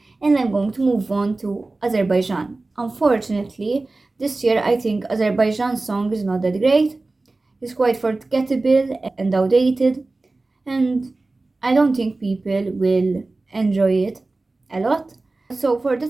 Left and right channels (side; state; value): left; quieter; 3.3 dB